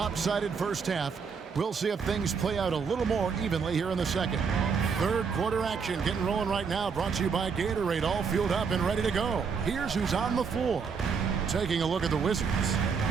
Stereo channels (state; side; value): quieter; left; 5.8 dB